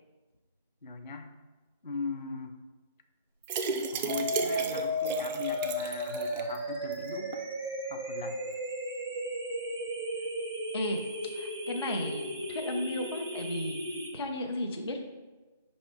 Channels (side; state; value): both; inverted; correlation -0.42